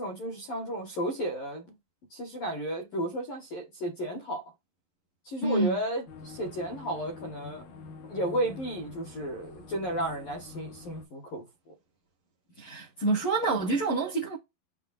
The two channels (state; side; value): late; right; 11 ms